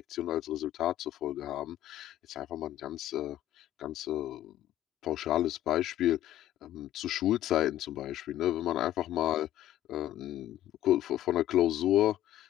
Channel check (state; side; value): quieter; right; 13.1 dB